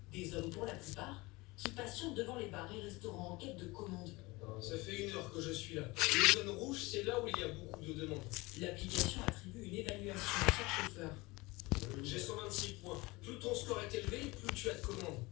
Des hommes pour la plupart qui patientent devant les bars et restaurants en quête de commandes. Ça fait 1 heure que je suis là. Les zones rouges, c'est là où il y a beaucoup de demandes. L'application attribue une évaluation à chaque chauffeur. J'ai 126 points. Plus ton score est élevé, plus tu as de commandes.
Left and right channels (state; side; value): quieter; right; 22.9 dB